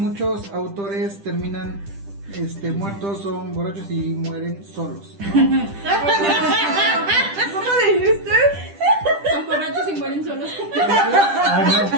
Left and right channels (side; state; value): left; late; 10 ms